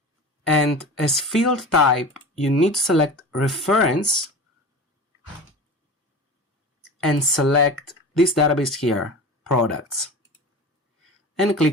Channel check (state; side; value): normal; both; correlation 0.33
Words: and as field type, you need to select Reference and select this database here, Products, and